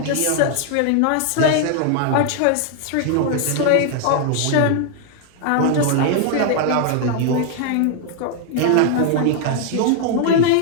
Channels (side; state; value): both; different; correlation 0.00